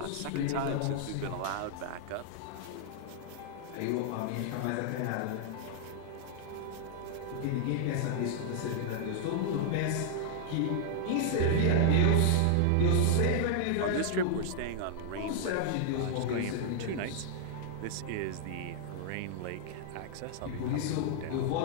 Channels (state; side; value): different; both; correlation -0.01